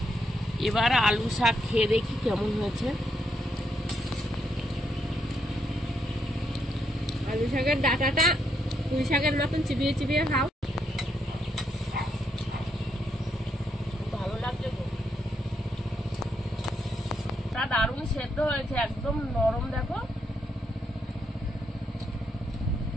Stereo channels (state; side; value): normal; both; correlation 0.78